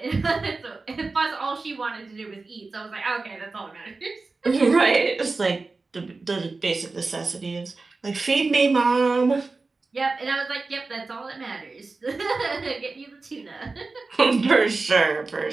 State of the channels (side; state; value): left; quieter; 3.8 dB